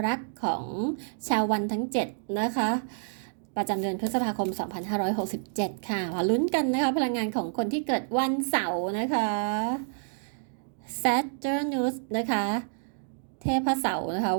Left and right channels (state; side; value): silent; left; digital silence